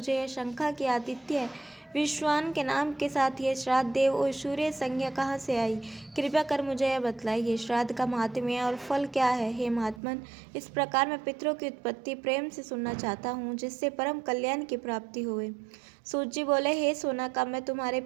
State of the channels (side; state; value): left; drops out; at 10.0 s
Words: यह शंका कि आदित्य विश्वान के नाम के साथ यह श्राद्ध देव और सूर्य संज्ञा कहाँ से आई। कृपया कर मुझे यह बतलाइए, श्राद्ध का महात्म्य और फल क्या है। हे महात्मन, इस प्रकार मैं पितरों की उत्पत्ति प्रेम से सुनना चाहता हूँ, जिससे परम कल्याण की प्राप्ति होवे। सूत जी बोले, हे सोनाका, मैं तुम्हारे